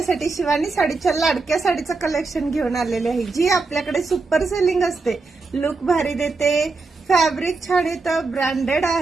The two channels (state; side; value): quieter; left; 3.9 dB